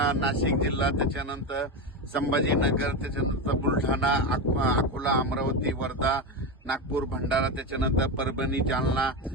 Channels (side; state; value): both; normal; correlation 0.15